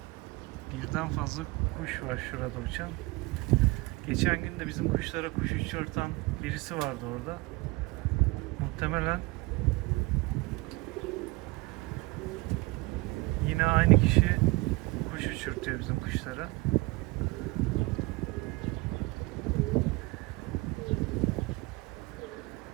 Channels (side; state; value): left; quieter; 23.2 dB